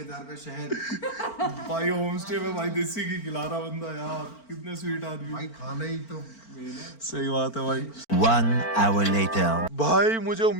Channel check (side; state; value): right; late; 4.4 ms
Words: का शहद। भाई होम स्टे में भाई देसी घी खिला रहा बंदा यार, कितने स्वीट आदमी। भाई खाना ही तो मेन है। सही बात है भाई। 1 hour later. भाई मुझे